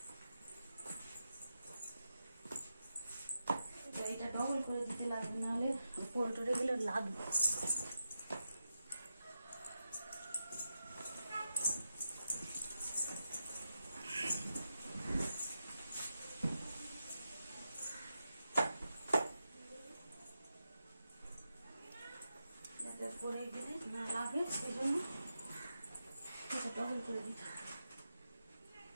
এইটা ডবল করে দিতে লাগবে, নাহলে পড়ে টরে গেলে লাগবে। পরে গেলে না লাগে, সেই জন্য এটা ডবল করে দিতে হবে।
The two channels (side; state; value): both; inverted; correlation -0.88